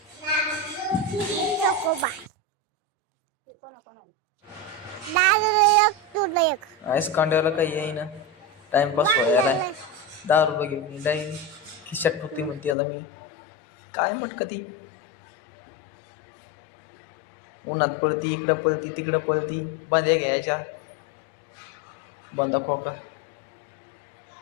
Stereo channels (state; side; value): drops out; right; at 12.8 s